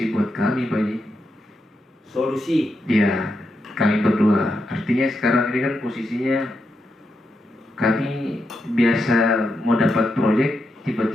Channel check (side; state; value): both; normal; correlation 0.84